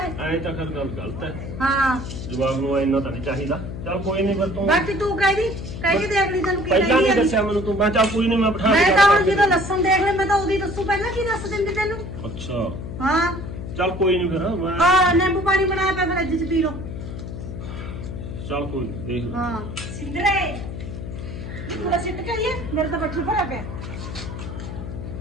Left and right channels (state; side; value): noise; left; hum, 8 dB below the sound